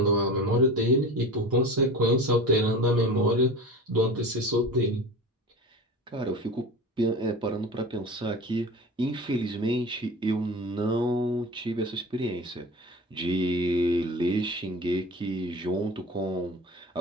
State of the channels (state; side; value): normal; both; correlation 0.33